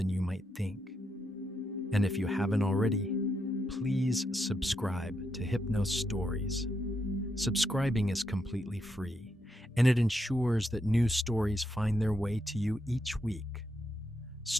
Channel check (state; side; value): normal; both; correlation 0.81